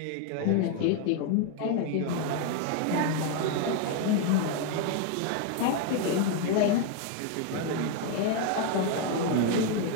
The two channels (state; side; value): different; both; correlation 0.01